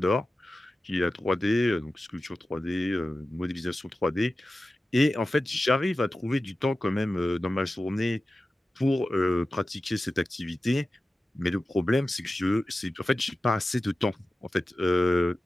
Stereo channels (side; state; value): both; normal; correlation 0.94